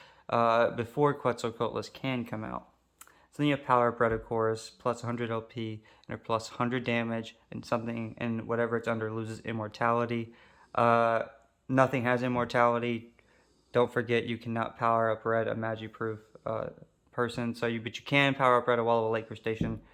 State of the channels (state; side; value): identical; both; correlation 1.00